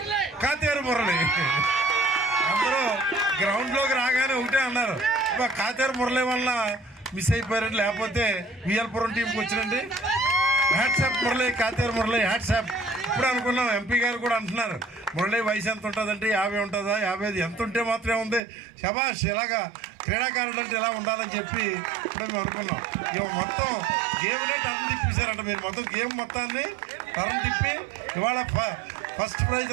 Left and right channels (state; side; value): drops out; left; at 18.4 s